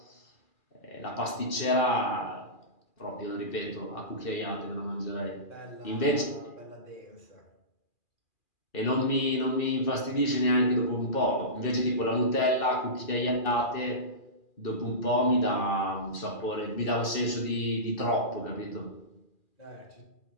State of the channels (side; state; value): right; late; 2.4 ms